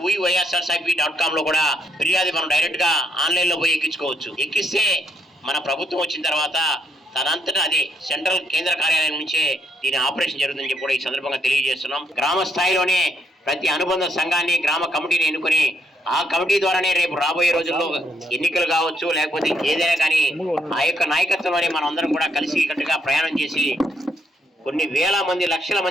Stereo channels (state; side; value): normal; both; correlation 0.75